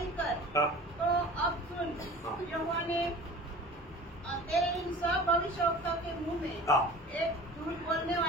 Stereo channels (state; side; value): normal; both; correlation 0.41